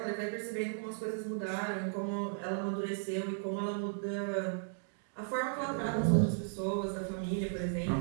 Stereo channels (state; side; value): silent; left; digital silence